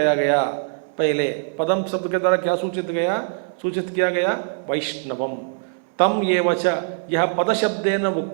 गया, पहले पदम शब्द के द्वारा क्या सूचित किया गया? वैष्णवम। तम येव च, यह पद शब्देन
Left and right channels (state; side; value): silent; left; digital silence